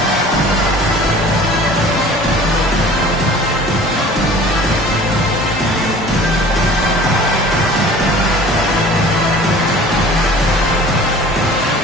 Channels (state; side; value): normal; both; correlation 0.45